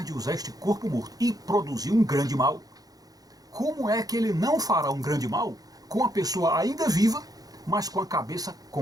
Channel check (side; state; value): left; late; 0.18 ms